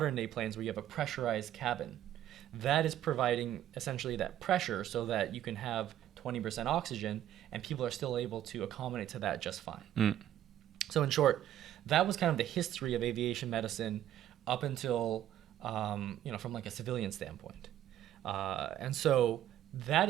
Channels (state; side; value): quieter; left; 11.9 dB